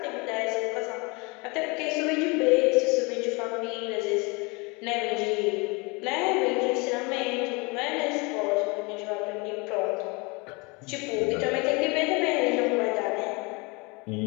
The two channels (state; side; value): quieter; right; 28.1 dB